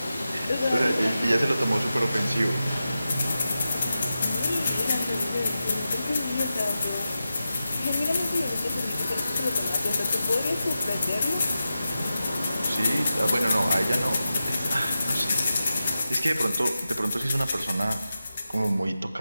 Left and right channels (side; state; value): both; inverted; correlation -0.91